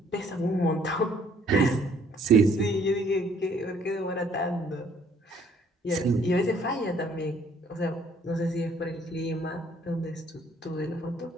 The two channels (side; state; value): both; normal; correlation 0.62